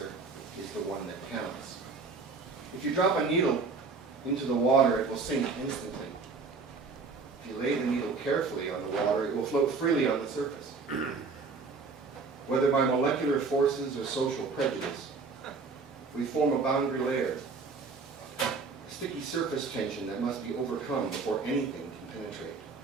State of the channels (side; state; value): left; quieter; 4.5 dB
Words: is the one that counts. If you drop a needle into the water, it will sink instantly. If you lay the needle carefully on the water, it will float freely on the surface. Whether by molecular forces or social prejudice, we form a boundary layer, a sticky surface tension that must be overcome before anything can penetrate.